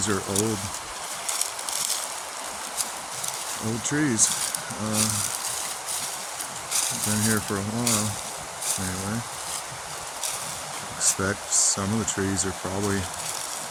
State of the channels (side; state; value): both; identical; correlation 1.00